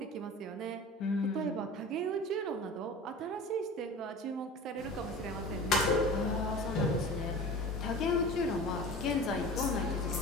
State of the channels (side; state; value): both; normal; correlation 0.36